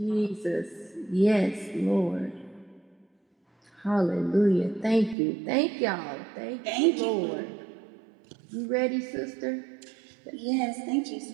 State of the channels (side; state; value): left; drops out; at 5.2 s